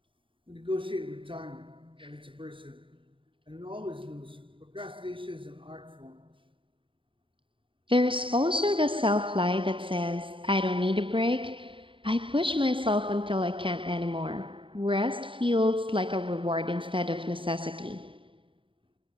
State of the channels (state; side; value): late; left; 0.25 ms